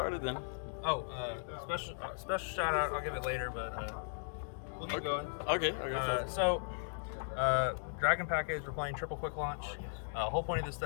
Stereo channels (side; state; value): right; silent; digital silence